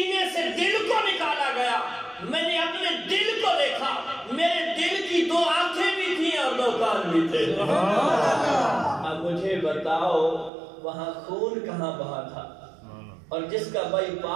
سے دل کو نکالا گیا، میں نے اپنے دل کو دیکھا، میرے دل کی 2 آنکھیں بھی تھیں اور 2 کان بھی تھے. اب مجھے بتاؤ وہاں خون کہاں بہا تھا؟ اور جس کا بائی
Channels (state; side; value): drops out; left; at 10.5 s